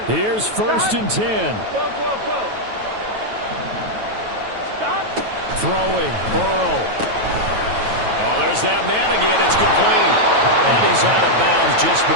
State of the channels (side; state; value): left; late; 9.2 ms